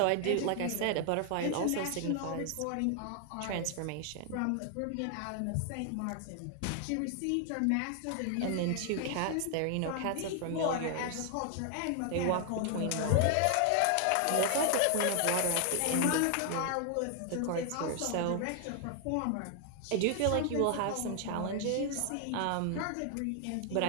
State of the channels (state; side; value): different; both; correlation 0.00